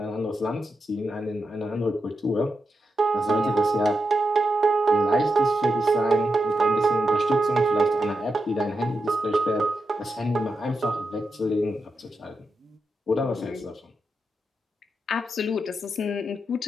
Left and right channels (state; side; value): normal; both; correlation 0.87